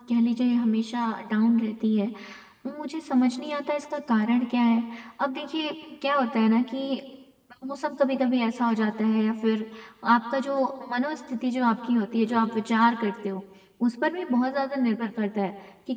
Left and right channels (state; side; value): identical; both; correlation 1.00